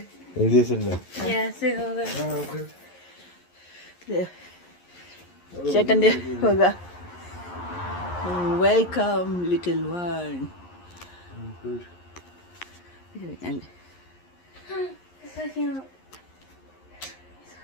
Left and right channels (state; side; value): late; right; 11 ms